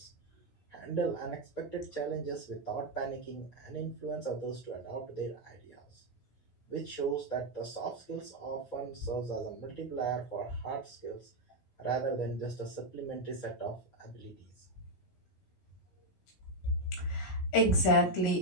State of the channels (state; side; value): late; right; 17 ms